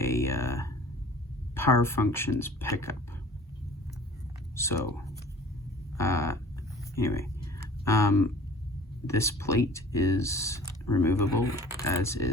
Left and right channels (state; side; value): normal; both; correlation 0.46